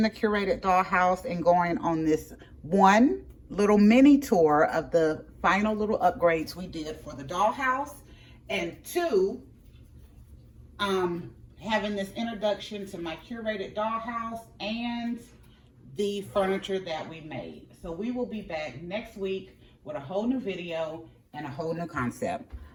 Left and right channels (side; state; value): both; identical; correlation 1.00